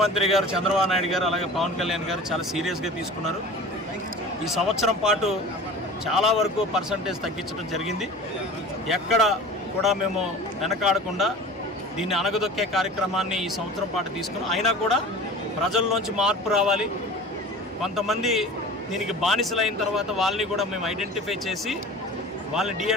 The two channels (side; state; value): both; normal; correlation 0.38